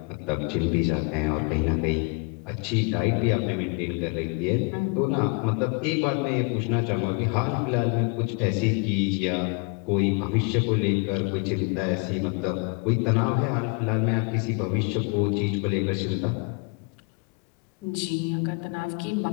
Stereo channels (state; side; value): quieter; right; 31.7 dB